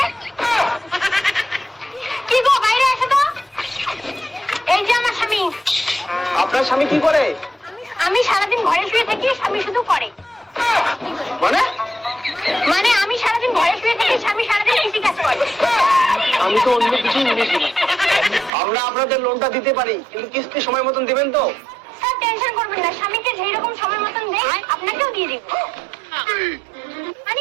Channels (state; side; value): drops out; left; at 18.5 s